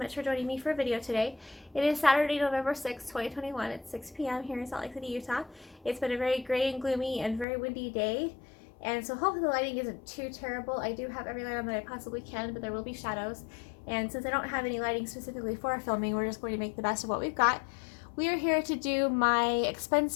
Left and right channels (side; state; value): right; drops out; at 7.5 s